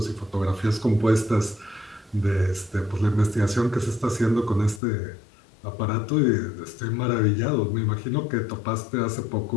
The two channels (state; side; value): drops out; right; at 4.8 s